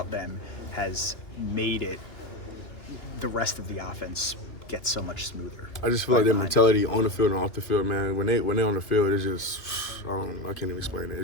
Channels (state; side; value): late; right; 2.5 ms